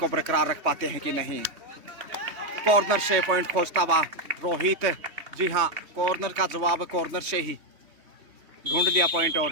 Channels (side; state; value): left; late; 3.1 ms